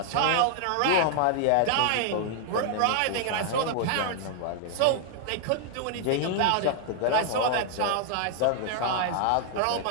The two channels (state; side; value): different; both; correlation 0.00